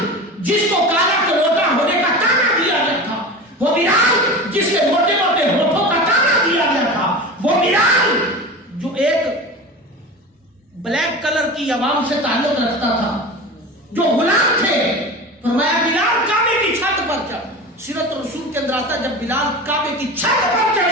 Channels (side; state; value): both; normal; correlation 0.31